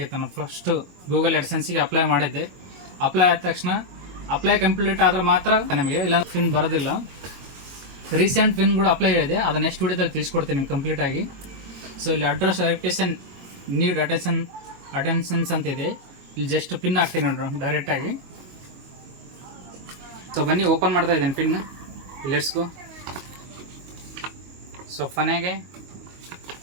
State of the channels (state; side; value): late; left; 22 ms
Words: ನಾನು ಫಸ್ಟು ಗೂಗಲ್ AdSenseಗೆ ಅಪ್ಲೈ ಮಾಡಿದ್ದೆ. ಅಪ್ಲೈ ಆದ ತಕ್ಷಣ ಅಪ್ಲೈ ಕಂಪ್ಲೀಟ್ ಆದರೆ ಮಾತ್ರ ನಮಗೆ, ಇಲ್ಲ ಪಿನ್ ಬರೋದಿಲ್ಲ. ರೀಸೆಂಟ್ ಪಿನ್ ಕೂಡ ಅಪ್ಲೈ ಇದೆ, ಅದು ನೆಕ್ಸ್ಟ್ ವಿಡಿಯೋದಲ್ಲಿ ತಿಳಿಸ್ಕೊಡ್ತೀನಿ ನಿಮ್ಗೆ ಕಂಪ್ಲೀಟಾಗಿ. ಸೊ ಇಲ್ಲಿ ಅಡ್ರೆಸ್ ವೆರಿಫಿಕೇಶನ್ ನೀಡ್ ಅಟೆನ್ಷನ್ಸ್ ಅಂತ ಇದೆ. ಇಲ್ಲಿ ಜಸ್ಟ್ ಪಿನ್ ಹಾಕ್ತೀನಿ ನೋಡ್ರಿ ಡೈರೆಕ್ಟಾಗಿ. ಸೊ ಬನ್ನಿ ಓಪನ್ ಮಾಡ್ತಾ ಇದ್ದೀನಿ ಪಿನ್. Let's go. ಸೊ ಕೊನೆಗೆ